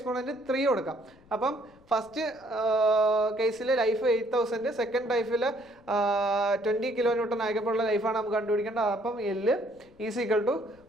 3 കൊടുക്കാം. അപ്പം ഫസ്റ്റ് കേസിൽ ലൈഫ് 8000, സെക്കൻഡ് ലൈഫിൽ 20 kilonewton ആയപ്പോഴുള്ള ലൈഫാണ് നമുക്ക് കണ്ടുപിടിക്കേണ്ടത്. അപ്പം L is equal to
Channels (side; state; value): left; noise; rumble, 29 dB below the sound